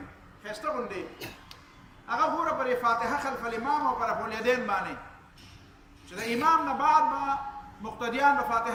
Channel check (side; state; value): both; identical; correlation 1.00